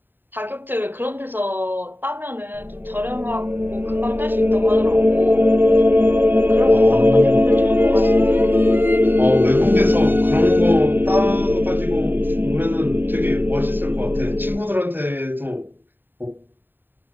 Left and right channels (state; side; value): late; left; 0.094 ms